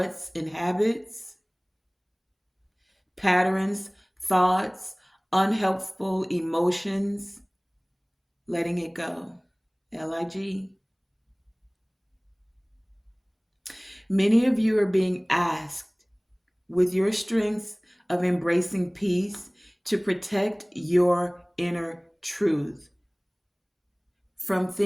and habits, patterns, thoughts, unhelpful emotions, letting it go. LIG. Many of you are being asked, with your strengths of embracing peace, to protect your inner truth from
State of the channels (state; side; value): identical; both; correlation 1.00